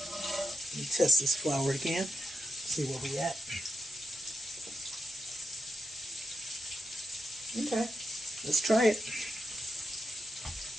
Let me test this flour again, see where we at. Okay, let's try it.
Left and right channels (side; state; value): both; normal; correlation 0.85